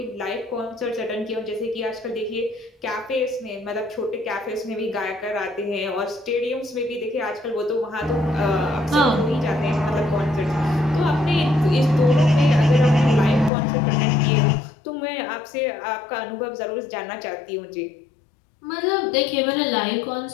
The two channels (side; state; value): right; drops out; at 13.5 s